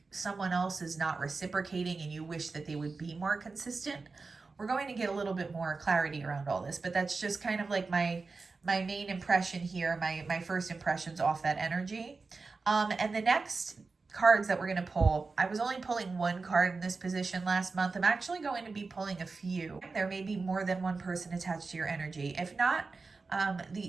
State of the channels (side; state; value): left; quieter; 4.1 dB